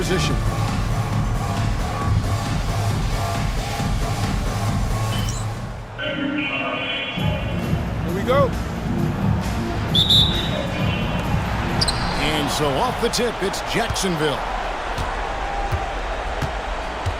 Here we go. And so off the tip, it's Jacksonville.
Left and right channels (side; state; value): both; identical; correlation 1.00